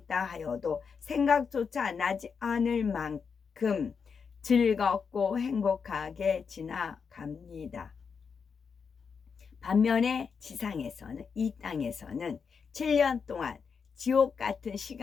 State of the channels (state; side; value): quieter; right; 5.9 dB